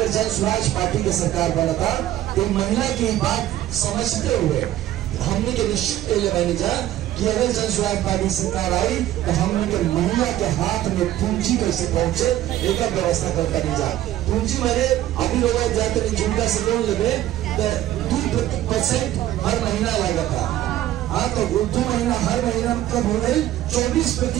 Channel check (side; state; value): left; quieter; 13.5 dB